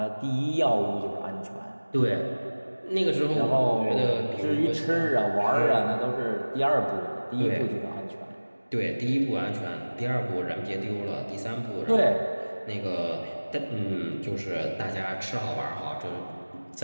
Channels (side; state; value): both; inverted; correlation -1.00